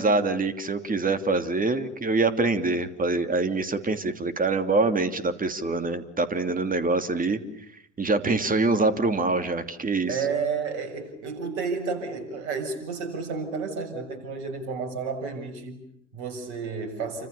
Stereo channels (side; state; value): left; quieter; 3.1 dB